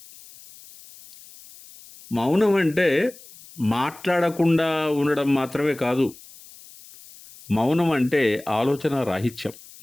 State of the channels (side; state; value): left; noise; hiss, 21 dB below the sound